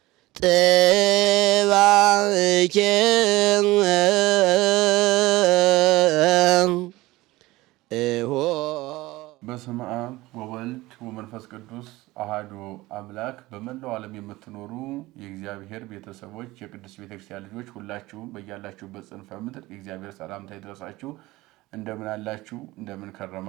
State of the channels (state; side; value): quieter; left; 19.3 dB